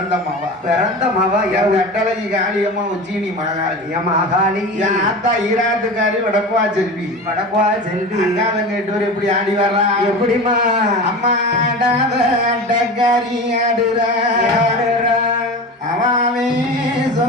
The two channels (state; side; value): normal; both; correlation 0.30